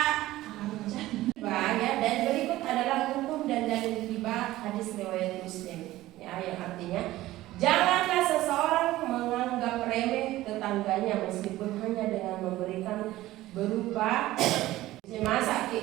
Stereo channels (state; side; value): quieter; left; 16.3 dB